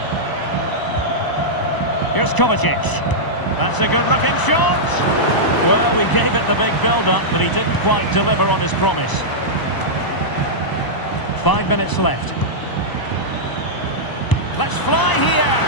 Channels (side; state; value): right; late; 1.0 ms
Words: Here's Kovacic. That's a good-looking shot. Well, we gave it the big build-up, but he didn't quite deliver on his promise. 5 minutes left. Let's fly here.